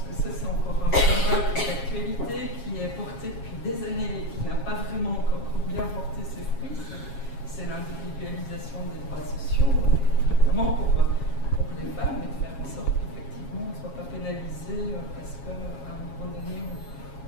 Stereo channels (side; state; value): right; late; 7.3 ms